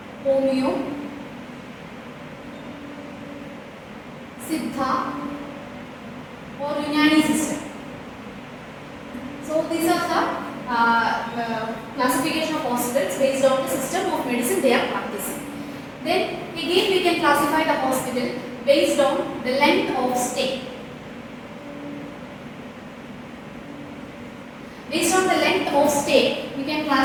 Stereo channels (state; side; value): identical; both; correlation 1.00